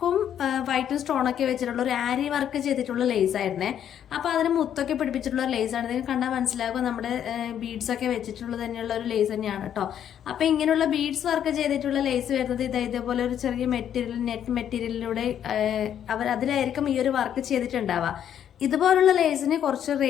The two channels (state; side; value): quieter; right; 9.7 dB